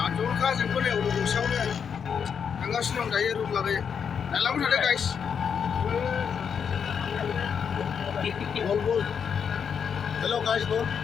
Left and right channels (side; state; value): right; quieter; 7.1 dB